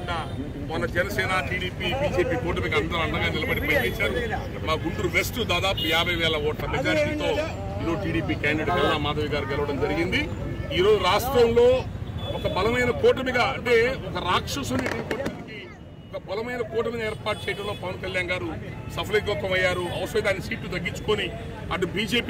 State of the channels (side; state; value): both; identical; correlation 1.00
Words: మొన్న జనసేన టీడీపీ బీజేపీ కూటమికి అందరూ అండగా నిలబడి పనిచేశారు. మా గుంటూరు వెస్ట్ దాదాపు 50,000 ఓట్ల మెజారిటీతో ఈరోజు టీడీపీ క్యాండిడేట్ కల్లా మాధవి గారు గెలవడం జరిగింది. ఈరోజు రాష్ట్రంలో ఒక బలమైన కూటమిగా అంటే ఒక రాక్షసుని ఒక బలమైన కూటమిని ఏర్పాటు చేయడంలో పవన్ కళ్యాణ్ గారు సఫలీకృతమయ్యారు. అవసరం దాని సీట్లు తగ్గించుకొని అటు